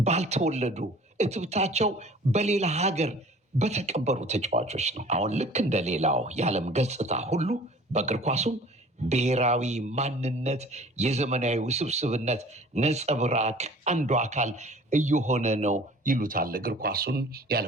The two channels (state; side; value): normal; both; correlation 0.47